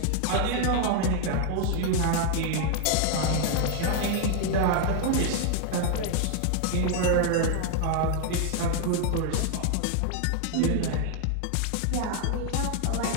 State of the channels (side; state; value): both; different; correlation 0.00